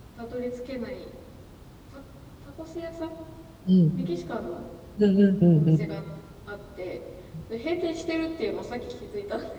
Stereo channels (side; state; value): both; identical; correlation 1.00